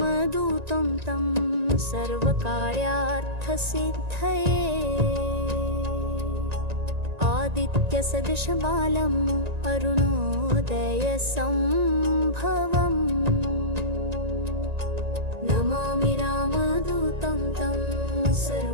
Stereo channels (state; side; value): late; left; 1.9 ms